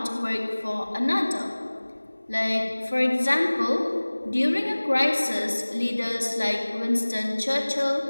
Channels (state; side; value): inverted; both; correlation -1.00